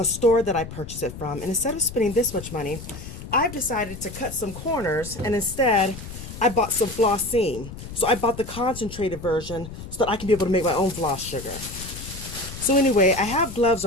store that I purchase it from. And instead of spending this much money, I've decided to cut some corners and instead I bought some Flossine. So I bought the concentrated version so that I can be able to make my own floss sugar. So anyway, I have gloves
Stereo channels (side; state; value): left; noise; rumble, 12 dB below the sound